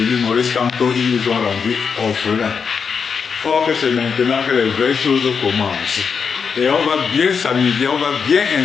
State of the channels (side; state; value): right; quieter; 6.0 dB